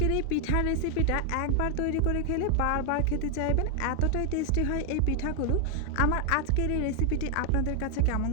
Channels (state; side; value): different; both; correlation 0.00